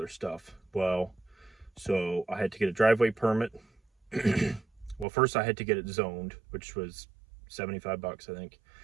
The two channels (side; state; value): left; drops out; at 5.1 s